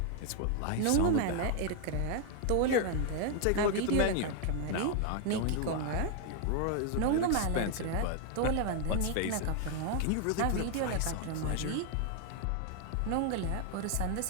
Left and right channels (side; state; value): both; different; correlation 0.00